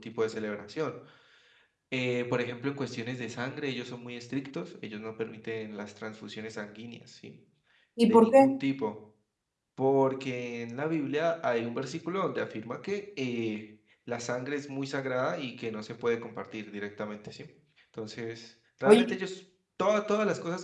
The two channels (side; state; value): both; identical; correlation 1.00